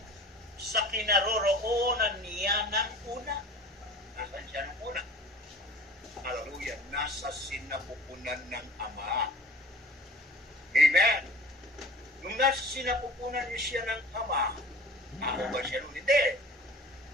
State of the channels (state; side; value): normal; both; correlation 0.43